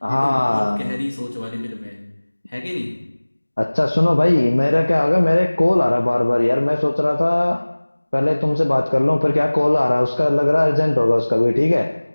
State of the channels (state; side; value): inverted; both; correlation -1.00